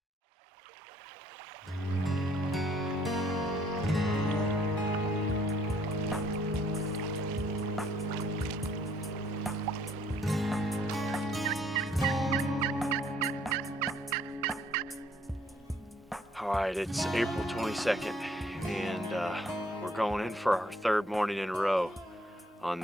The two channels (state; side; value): normal; both; correlation 0.64